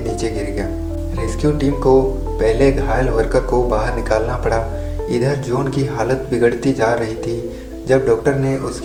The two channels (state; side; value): identical; both; correlation 1.00